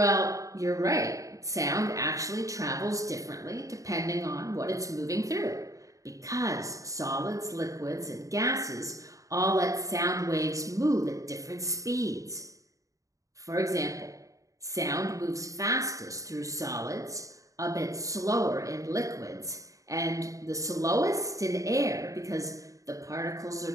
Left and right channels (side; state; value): left; late; 0.16 ms